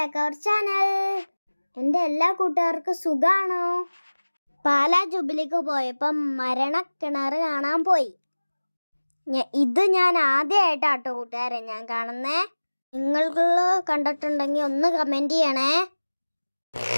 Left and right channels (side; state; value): both; inverted; correlation -1.00